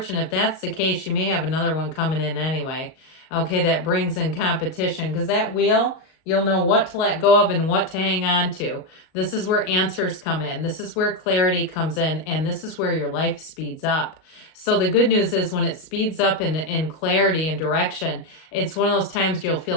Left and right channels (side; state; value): right; late; 38 ms